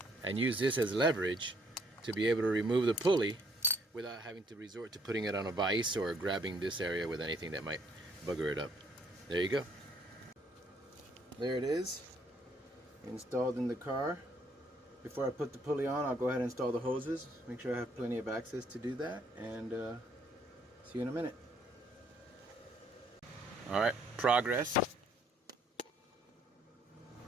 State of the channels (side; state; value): both; normal; correlation 0.66